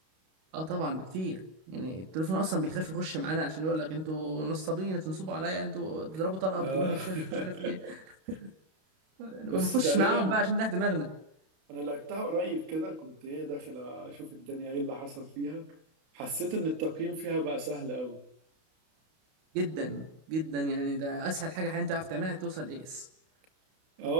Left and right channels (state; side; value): late; left; 32 ms